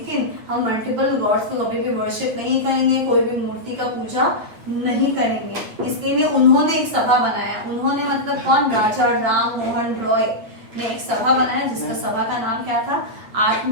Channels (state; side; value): late; left; 9.2 ms